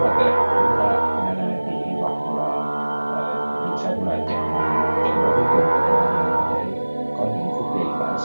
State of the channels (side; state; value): both; inverted; correlation -1.00